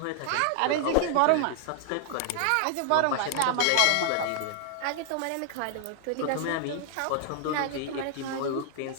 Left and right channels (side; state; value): both; different; correlation 0.00